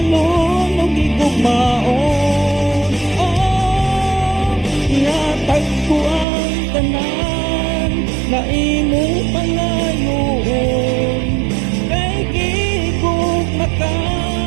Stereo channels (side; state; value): left; drops out; at 6.2 s